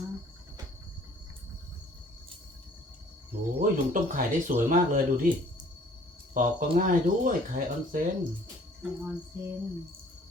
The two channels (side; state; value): both; normal; correlation 0.56